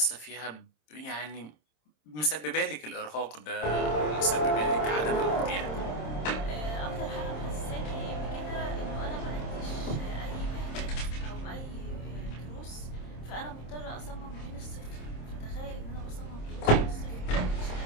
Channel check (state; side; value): late; right; 26 ms